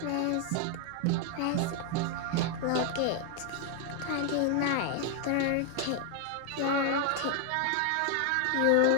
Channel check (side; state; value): both; different; correlation 0.00